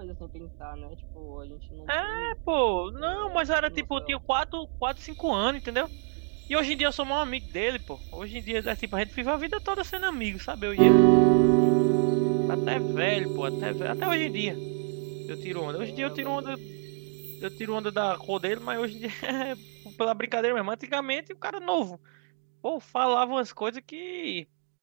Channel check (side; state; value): left; quieter; 36.5 dB